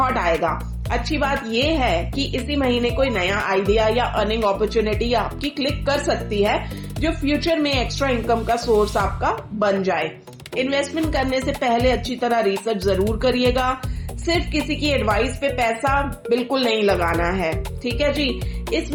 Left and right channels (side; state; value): both; identical; correlation 1.00